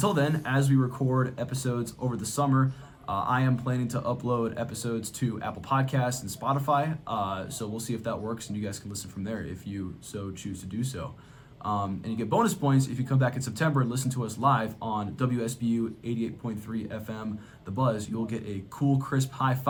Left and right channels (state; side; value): identical; both; correlation 1.00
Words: then, as we record episodes over the summer, I am planning to upload episodes to Apple Podcasts and Spotify, so we'll see if that works, and you guys can listen from there if you so choose to do so. And you get bonus points if you come back in September and listen to us live on WSBU 88.3 FM, The Buzz. You'll get a cool, crisp high